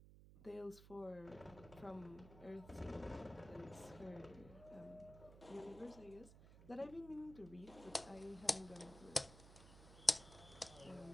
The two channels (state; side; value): noise; right; hum, 16 dB below the sound